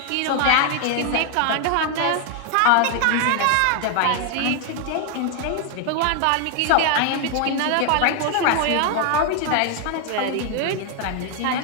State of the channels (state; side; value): different; both; correlation 0.01